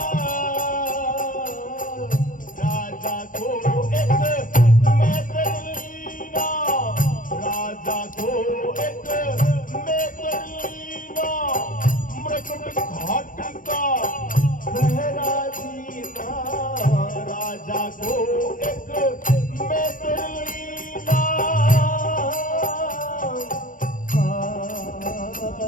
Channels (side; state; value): right; late; 0.39 ms